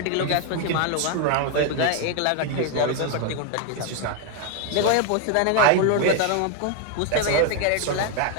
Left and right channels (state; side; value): different; both; correlation 0.01